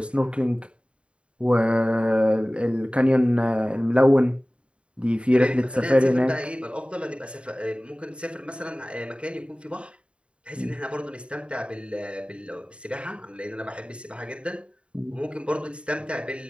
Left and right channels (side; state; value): left; late; 0.058 ms